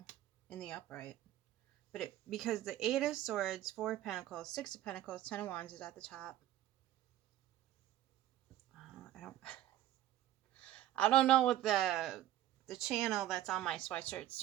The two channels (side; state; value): left; quieter; 13.2 dB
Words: in the upright. But because the Eight of Swords, Four of Pentacles, Six of Pentacles, Ten of Wands is at the top. I don't know what the channel that's on my sweatshirt's